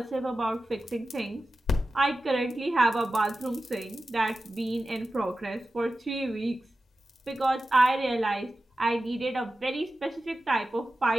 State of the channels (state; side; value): normal; both; correlation 0.94